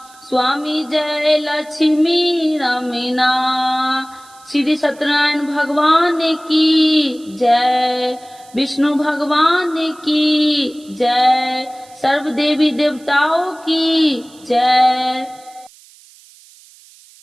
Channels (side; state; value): right; noise; hiss, 25 dB below the sound